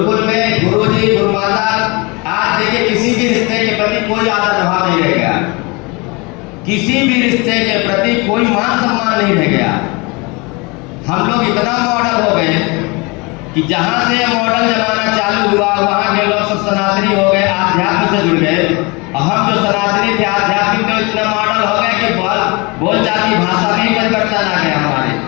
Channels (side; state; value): right; quieter; 27.2 dB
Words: में गुरुजी गुरुमाता, आज देखिए किसी भी रिश्ते के प्रति कोई आदर भाव नहीं रह गया, किसी भी रिश्ते के प्रति कोई मान सम्मान नहीं रह गया। हम लोग इतना मॉडल हो गए कि जहां से मॉडल जमाना चालू हुआ वहां के लोग सब सनातनी हो गए, आध्यात्म से जुड़ गए। और हम जो सनातनी थे आध्यात्मिक में इतना मॉडल हो गए कि बोलचाल की भाषा में परिवर्तन आ गया हमारे।